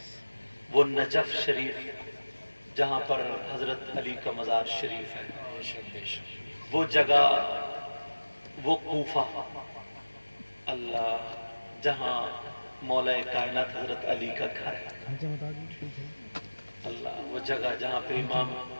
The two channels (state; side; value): inverted; both; correlation -1.00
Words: وہ نجف شریف جہاں پر حضرت علی کا مزار شریف ہے، وہ جگہ، وہ کوفہ اللہ جہاں مولا کائنات حضرت علی کا گھر ہے، اللہ وہ جگہ جہاں پہ امام